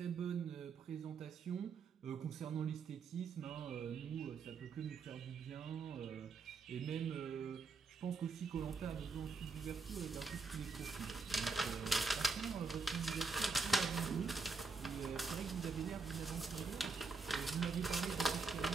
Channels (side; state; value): left; quieter; 4.5 dB